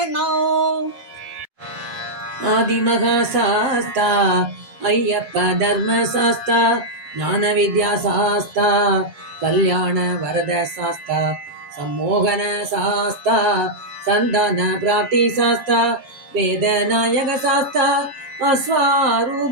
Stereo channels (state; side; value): late; left; 7.6 ms